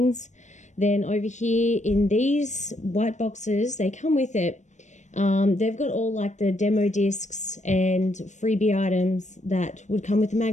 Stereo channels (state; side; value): late; right; 0.34 ms